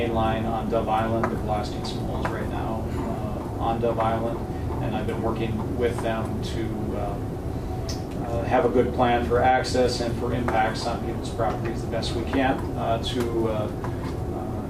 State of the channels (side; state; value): both; identical; correlation 1.00